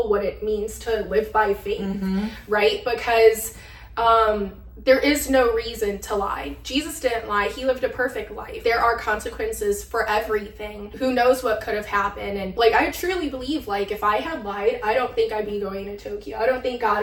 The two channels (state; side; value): identical; both; correlation 1.00